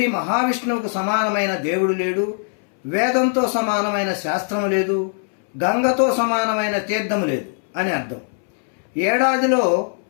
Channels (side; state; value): right; silent; 65 dB below the other